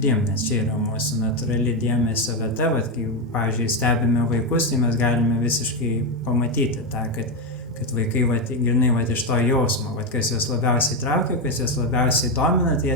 nes čia yra mūsų natūrali dėmesio vieta. Kai, pavyzdžiui, stebime vaikus, tai mes galime visiškai pamatyti tą, kad vaikai grinai iš to jausmo, kas juos labiausiai traukia, kas juos labiausiai domina, tai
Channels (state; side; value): normal; both; correlation 0.08